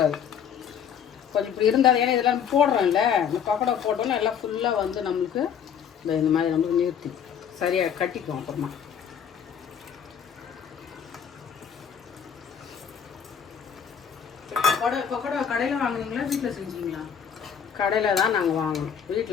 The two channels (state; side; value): quieter; right; 7.9 dB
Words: கொஞ்சம் இப்படி இருந்தால் ஏன்னா இதெல்லாம் போடுறோம்ல இந்த பக்கோடா போட்டோன்னா எல்லாம் ஃபுல்லாக வந்து நம்மளுக்கு இந்த மாதிரி நம்மளுக்கு நிறுத்தி சரியாக கட்டிக்குவோம். அப்புறமா பக்கோடா கடையில் வாங்குனீங்களா வீட்டில் செஞ்சீங்களா? கடையில் தான் நாங்கள் வாங்கணும்.